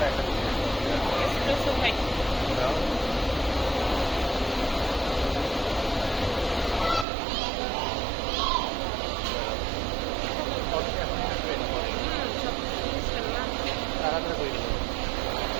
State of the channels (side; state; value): left; drops out; at 7.1 s